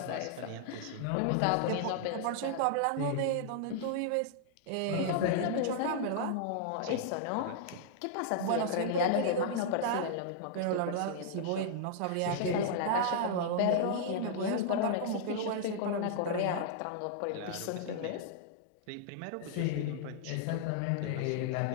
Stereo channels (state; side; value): different; both; correlation -0.01